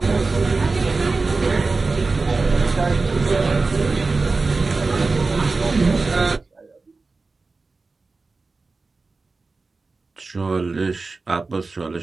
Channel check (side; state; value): left; quieter; 3.8 dB